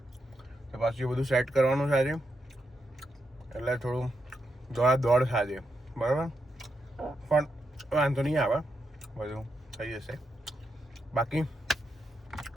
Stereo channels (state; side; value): normal; both; correlation 0.84